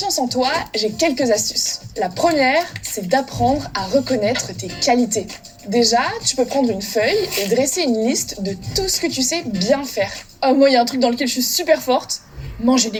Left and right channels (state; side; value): identical; both; correlation 1.00